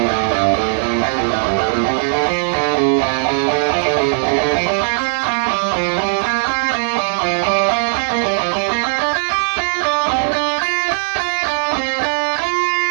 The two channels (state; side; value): silent; left; 67 dB below the other